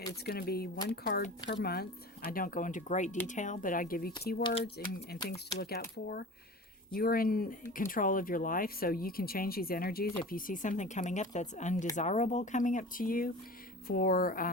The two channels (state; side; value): normal; both; correlation 0.36